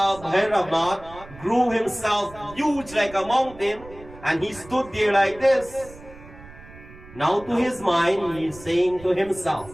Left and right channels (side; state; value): right; noise; rumble, 19 dB below the sound